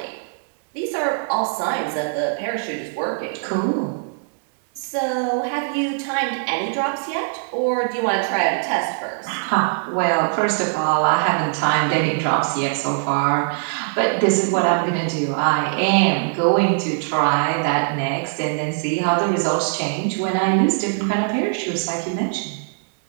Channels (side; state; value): left; silent; digital silence